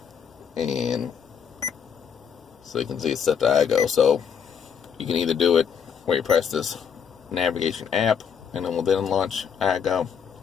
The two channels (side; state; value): right; quieter; 7.3 dB